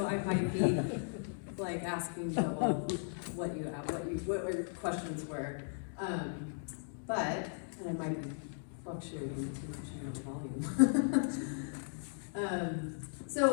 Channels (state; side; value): silent; right; digital silence